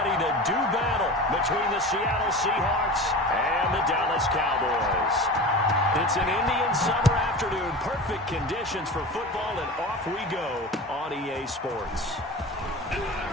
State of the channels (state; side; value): normal; both; correlation 0.32